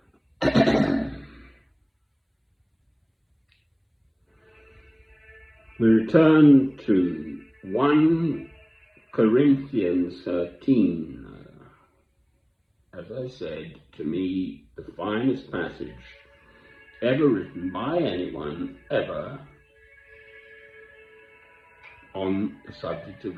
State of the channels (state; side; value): identical; both; correlation 1.00